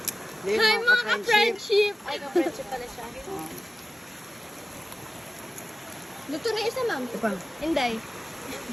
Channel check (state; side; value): normal; both; correlation 0.97